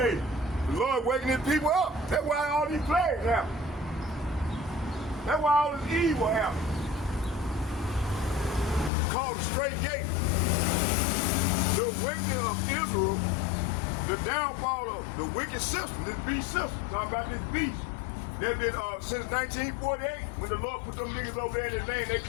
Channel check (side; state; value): right; drops out; at 8.9 s